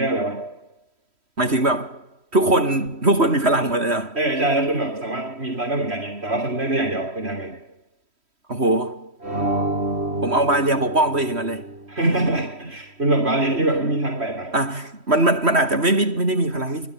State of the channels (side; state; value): left; late; 3.1 ms